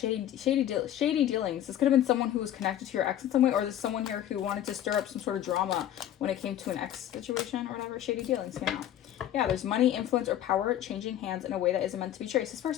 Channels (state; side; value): quieter; right; 11.6 dB